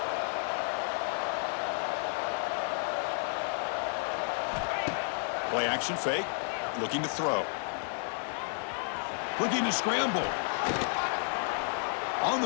Play action fake. Looking to throw. Looking to scramble. On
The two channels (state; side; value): silent; right; 57 dB below the other